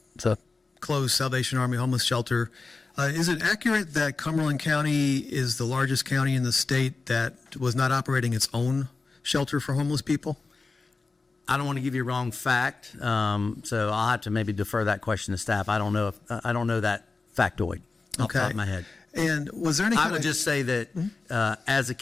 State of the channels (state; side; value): quieter; right; 3.9 dB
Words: closed Salvation Army homeless shelter, is it accurate that Cumberland County is the largest county in the state that was not operating its own shelter for homeless people? I don't want to give you a wrong fact, so I'll have to maybe defer that question to staff. I don't know that factoid off the top of my head. And was there any I kind would of, just say that as a